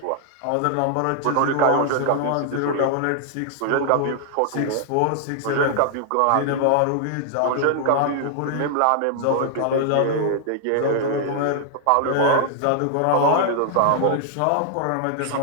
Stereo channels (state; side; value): different; both; correlation -0.01